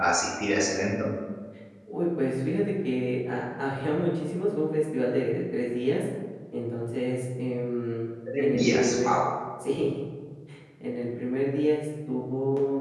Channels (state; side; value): identical; both; correlation 1.00